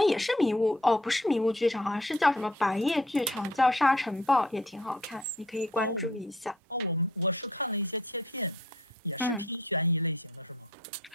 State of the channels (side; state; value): both; normal; correlation 0.59